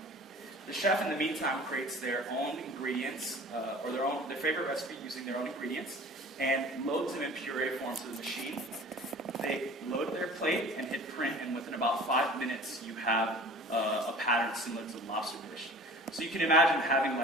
The chef, in the meantime, creates their own ingredients, or their favorite recipe using their own ingredients, and loads them in puree form to the machine. They load their plate and hit print, and within about 5 minutes, you have a pattern similar to the lobster dish. So you can imagine having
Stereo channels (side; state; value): both; normal; correlation 0.44